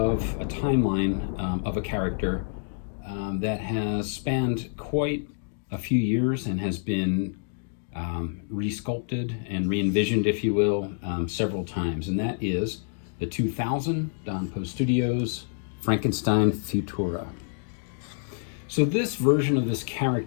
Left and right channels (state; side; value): silent; right; digital silence